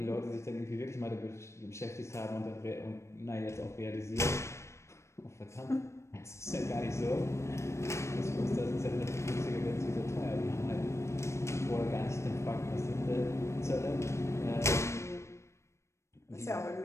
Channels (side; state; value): right; late; 0.13 ms